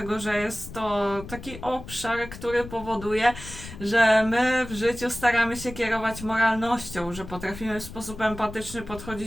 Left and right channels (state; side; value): noise; left; rumble, 13 dB below the sound